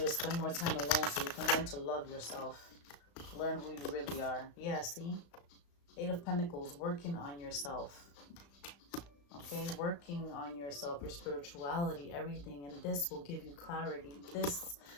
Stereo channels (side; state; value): right; late; 35 ms